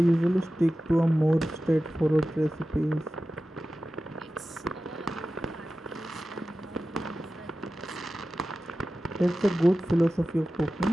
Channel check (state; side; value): normal; both; correlation 0.94